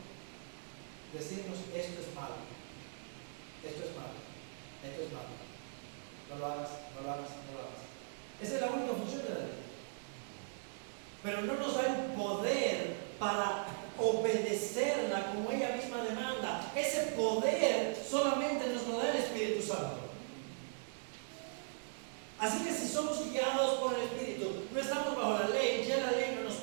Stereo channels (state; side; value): silent; left; digital silence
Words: decirnos esto es malo, esto es malo, esto es malo. No lo hagas, no lo hagas, no lo hagas. Esa es la única función de la ley. Pero no nos da el poder para obedecerla como ella misma demanda. Ese poder solamente nos lo da el Espíritu Santo. Así que si somos guiados por el Espíritu, no estamos bajo la ley, ya la ley no nos